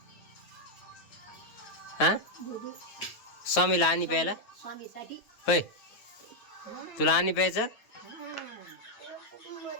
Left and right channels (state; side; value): late; right; 9.3 ms